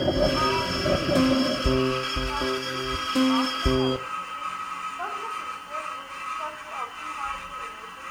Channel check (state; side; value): identical; both; correlation 1.00